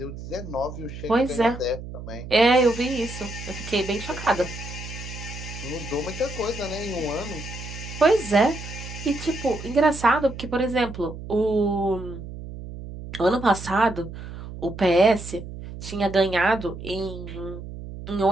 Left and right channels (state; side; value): noise; right; hum, 11 dB below the sound